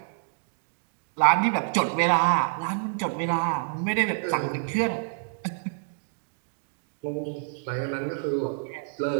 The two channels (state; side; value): silent; left; digital silence